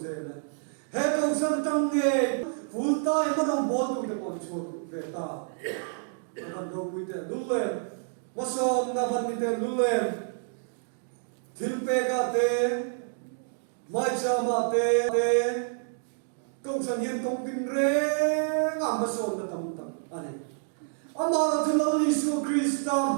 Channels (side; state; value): left; silent; digital silence